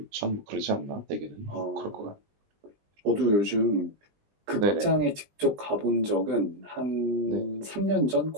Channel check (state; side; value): late; left; 20 ms